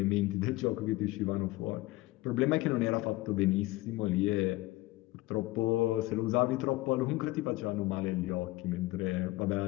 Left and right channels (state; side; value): quieter; right; 19.4 dB